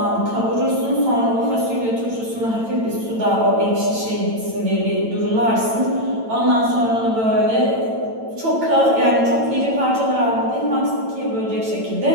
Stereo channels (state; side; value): late; left; 9.0 ms